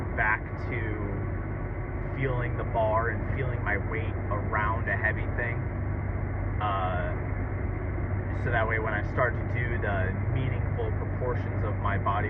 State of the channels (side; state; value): both; identical; correlation 1.00